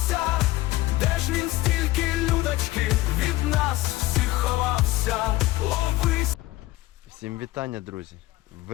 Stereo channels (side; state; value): right; quieter; 18.0 dB